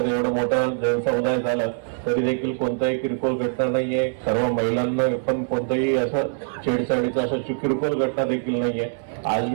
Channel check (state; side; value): silent; left; 63 dB below the other